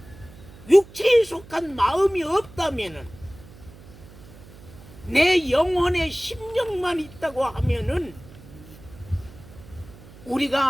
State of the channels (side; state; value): right; noise; hum, 20 dB below the sound